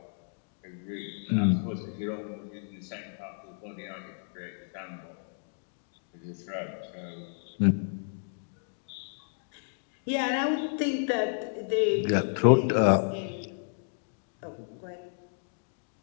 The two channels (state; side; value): silent; right; digital silence